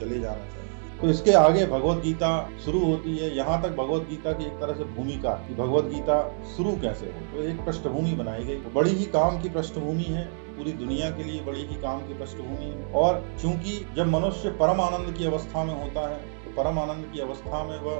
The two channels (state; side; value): silent; left; 60 dB below the other